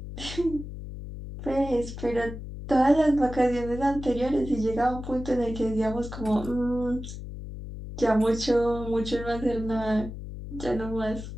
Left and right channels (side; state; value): left; noise; hum, 10 dB below the sound